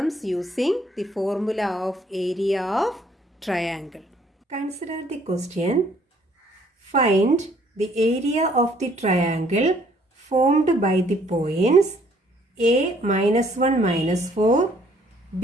using the formula of area of triangle. Consider the question. Find the area of the triangle formed by the points A -1 -4,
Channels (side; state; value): both; normal; correlation 0.62